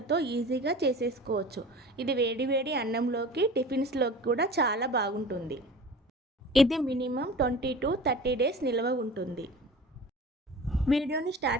ఈజీగా చేసేసుకోవచ్చు. ఇది వేడి అన్నంలోకి, టిఫిన్స్లోకి కూడా చాలా బాగుంటుంది. ఇది మినిమం 20 to 30 డేస్ నిల్వ ఉంటుంది. వీడియోని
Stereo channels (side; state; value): both; normal; correlation 0.39